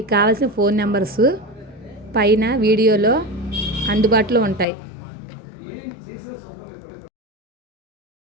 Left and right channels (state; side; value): drops out; right; at 4.7 s